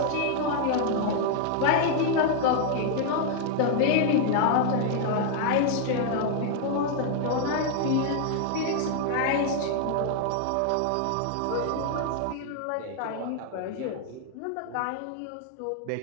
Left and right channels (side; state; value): both; different; correlation 0.00